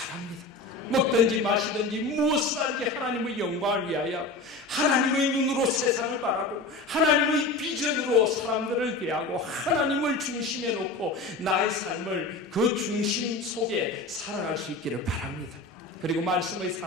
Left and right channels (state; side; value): quieter; right; 3.1 dB